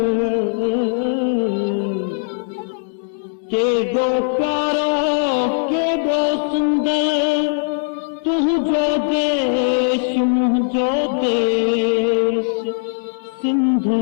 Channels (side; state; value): right; silent; 66 dB below the other